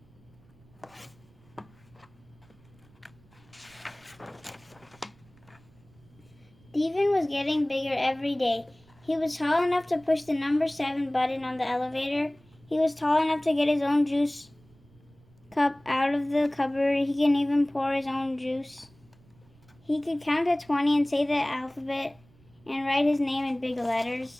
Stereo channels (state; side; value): noise; right; rumble, 28 dB below the sound